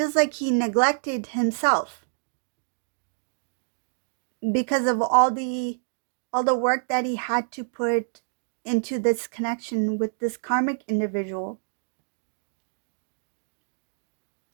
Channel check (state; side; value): silent; left; digital silence